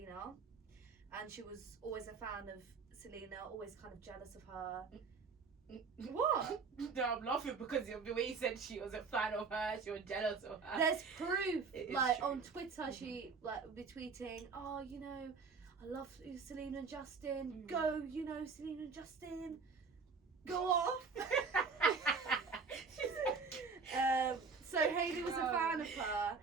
and she was always a fan of Selena, always kind of jealous of her. What? No, I'm laughing because of the way you said she was a fan of her, she was jealous of her. There's proof. It is Like true. on Twitter, she would be tweeting, "Oh, I love Selena and Justin. Mm. Go, Selena and Justin. Go off." So Hailey was a fan of her,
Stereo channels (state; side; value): quieter; left; 5.0 dB